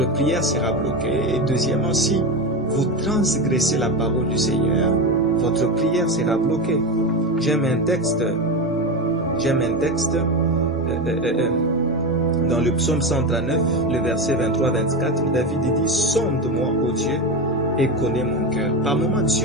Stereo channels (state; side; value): normal; both; correlation 0.18